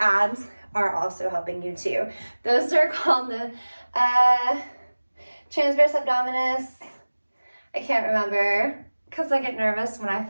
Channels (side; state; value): both; inverted; correlation -1.00